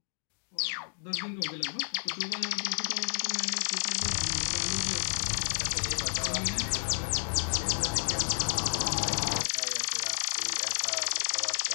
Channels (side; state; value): right; silent; 57 dB below the other